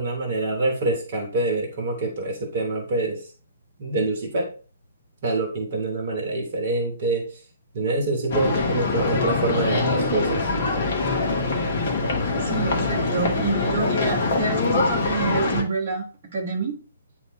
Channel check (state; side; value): inverted; both; correlation -0.49